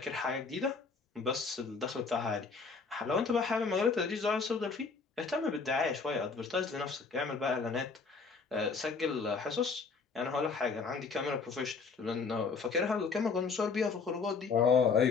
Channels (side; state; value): right; quieter; 4.9 dB